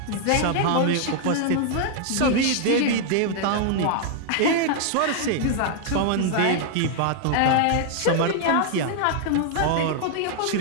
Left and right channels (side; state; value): both; different; correlation 0.00